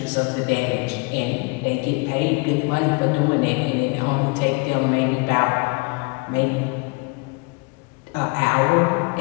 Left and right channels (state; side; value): quieter; right; 29.7 dB